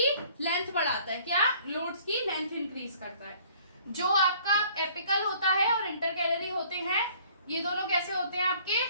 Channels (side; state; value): both; inverted; correlation -0.56